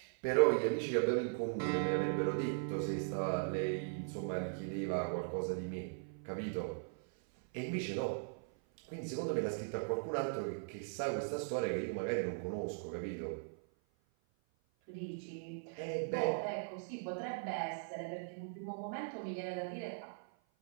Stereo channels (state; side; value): silent; left; 52 dB below the other